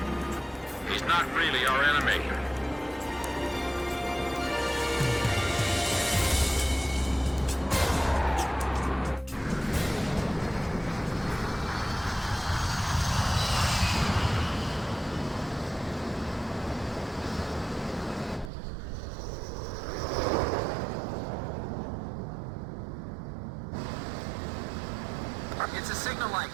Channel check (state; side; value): drops out; left; at 18.5 s